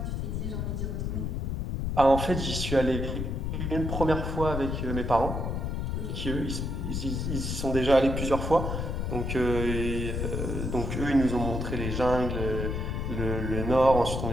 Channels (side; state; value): left; noise; rumble, 2 dB below the sound